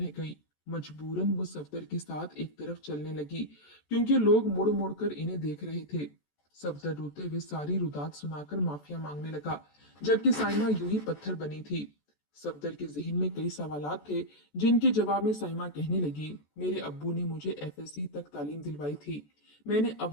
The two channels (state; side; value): late; right; 14 ms